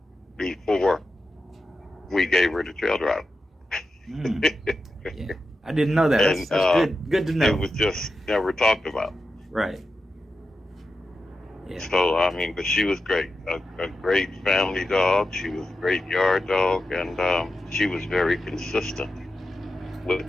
before we gave her the trail drive. Mm. Yeah. I didn't know that. And, That's good. Good to know. It was just never talked about. Right. Yeah. So, I mean, but she was great. A great family dog. She was a great yard dog. And she was very consistent with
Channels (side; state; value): both; normal; correlation 0.90